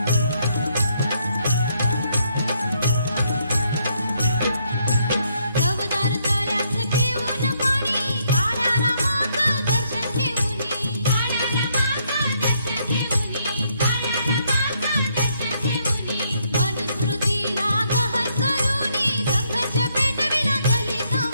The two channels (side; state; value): both; inverted; correlation -0.72